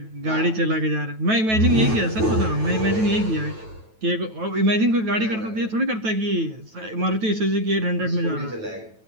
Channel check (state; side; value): late; left; 9.2 ms